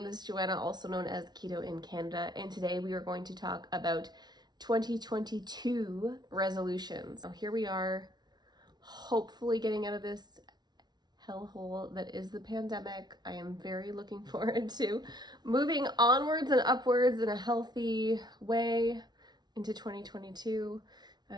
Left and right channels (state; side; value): late; left; 0.20 ms